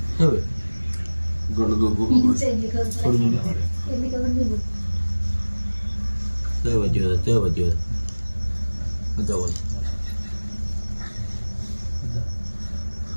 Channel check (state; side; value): inverted; both; correlation -1.00